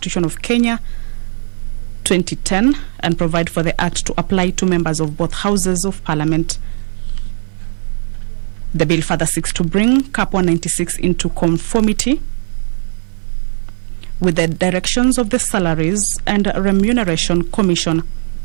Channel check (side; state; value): left; silent; digital silence